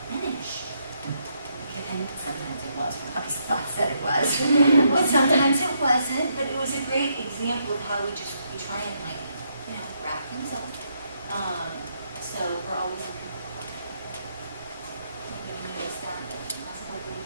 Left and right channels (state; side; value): inverted; both; correlation -0.77